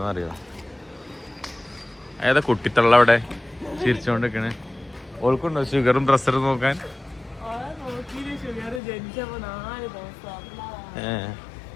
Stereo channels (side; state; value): right; drops out; at 8.8 s